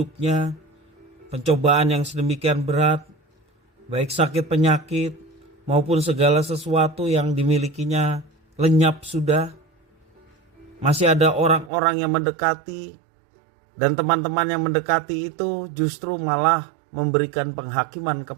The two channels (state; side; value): drops out; left; at 11.7 s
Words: pencobaan yang sedemikian berat, baik sakit penyakit maupun segala sesuatu yang dimilikinya lenyap sudah, masih ada orang-orang yang mendekati, dan teman-teman yang mendekati itu justru malah memberikan penghakiman